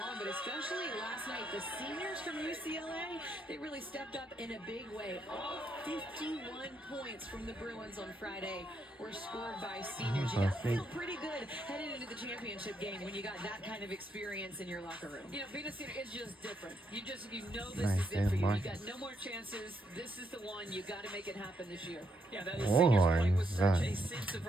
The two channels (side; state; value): both; normal; correlation 0.77